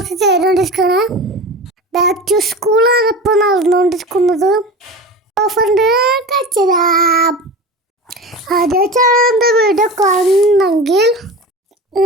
ചെയ്തുകൊണ്ടിരിക്കുകയാണ്. ബാക്ക് ടു സ്കൂളാണ് ഇപ്പോൾ നടന്നുകൊണ്ടിരിക്കുന്നത്. ഓഫറിൻ്റെ കച്ചരാം. ആദ്യമായിട്ടാണ് വീഡിയോ കാണുന്നെങ്കിൽ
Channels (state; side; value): normal; both; correlation 0.31